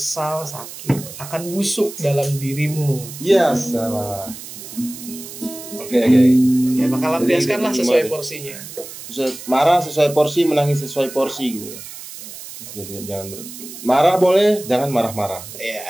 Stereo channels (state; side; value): noise; right; hiss, 13 dB below the sound